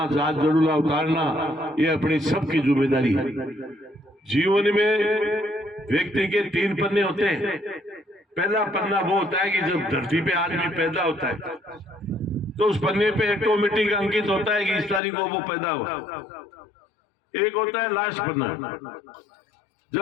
जात जड़ूला उतारना, ये अपनी सबकी जिम्मेदारी है। जीवन में व्यक्ति के 3 पन्ने होते हैं। पहला पन्ना वो होता है कि जब धरती पे आदमी पैदा होता है तो उस पन्ने पे ऑटोमेटिक अंकित होता है कि इस तारीख को वो पैदा हुआ। एक होता है लास्ट पन्ना,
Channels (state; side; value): drops out; right; at 15.0 s